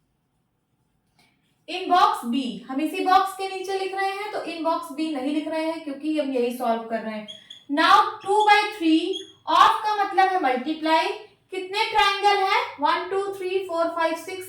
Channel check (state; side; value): identical; both; correlation 1.00